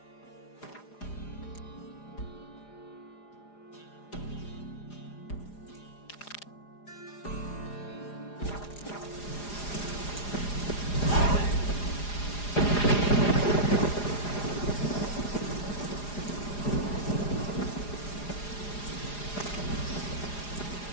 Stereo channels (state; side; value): late; right; 4.9 ms